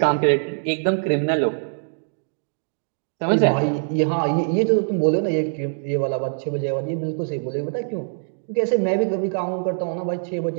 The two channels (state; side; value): silent; left; digital silence